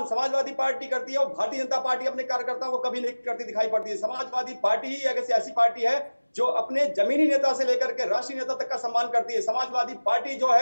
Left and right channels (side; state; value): both; inverted; correlation -1.00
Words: समाजवादी पार्टी करती है और भारतीय जनता पार्टी अपने कार्यकर्ताओं को कभी नहीं करती दिखाई पड़ती है। समाजवादी पार्टी ही एक ऐसी पार्टी है जो अपने जमीनी नेता से लेकर के राष्ट्रीय नेता तक का सम्मान करती है। समाजवादी पार्टी जो